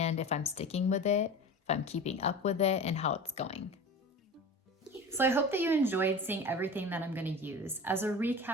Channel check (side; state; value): both; normal; correlation 0.34